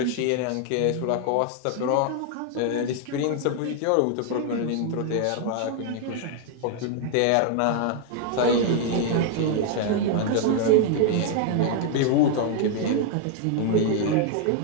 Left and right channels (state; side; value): different; both; correlation 0.00